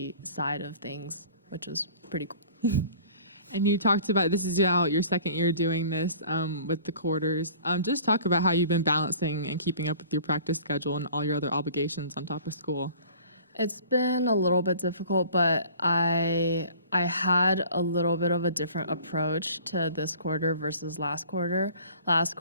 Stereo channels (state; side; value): inverted; both; correlation -0.48